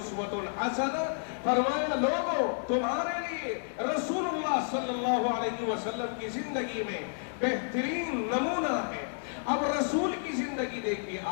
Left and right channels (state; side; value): silent; right; digital silence